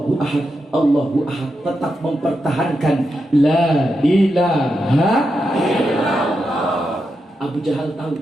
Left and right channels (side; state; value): both; normal; correlation 0.86